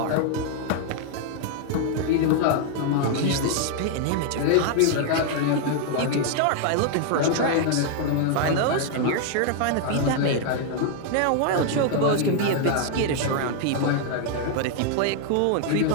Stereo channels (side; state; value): both; different; correlation 0.00